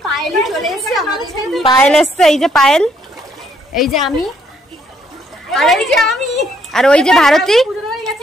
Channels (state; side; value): normal; both; correlation 0.69